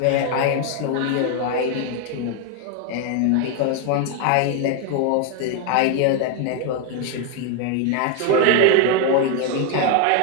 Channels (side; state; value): both; different; correlation 0.01